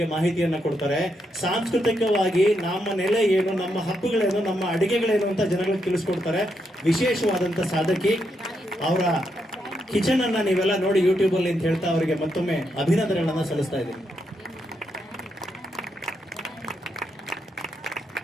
ಮಾಹಿತಿಯನ್ನ ಕೊಡ್ತಾರೆ. ಸಾಂಸ್ಕೃತಿಕವಾಗಿ ನಮ್ಮ ನೆಲೆ ಏನು, ನಮ್ಮ ಹಬ್ಬಗಳೇನು, ನಮ್ಮ ಅಡಿಗೆಗಳೇನು ಅಂತ ಜನಗಳಿಗೆ ತಿಳಿಸ್ಕೊಡ್ತಾರೆ. ವಿಶೇಷವಾದಂತ ಸಾಧಕಿ. ಅವರ ಕಿಚನ್ ಅನ್ನ ನೀವೆಲ್ಲ ನೋಡಿ ಯೂಟ್ಯೂಬ್ ಅಲ್ಲಿ ಅಂತ ಹೇಳ್ತಾ ಅವರಿಗೆ ಮತ್ತೊಮ್ಮೆ ಅಭಿನಂದನೆಗಳನ್ನ ಸಲ್ಲಿಸ್ತಾ ಇದ್ದೀನಿ.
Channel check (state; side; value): normal; both; correlation 0.81